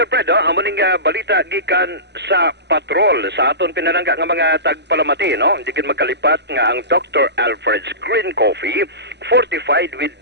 Pred, ang muning balita gikan sa patrol sa aton pinalangga nga mga tagpalamati, no? Hindi kin magkalipat nga ang Dr. Alfred's Green Coffee fortified with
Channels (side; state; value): left; late; 0.50 ms